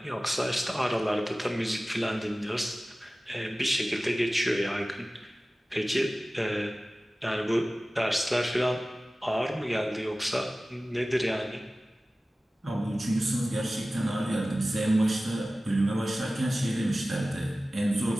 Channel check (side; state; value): both; normal; correlation 0.97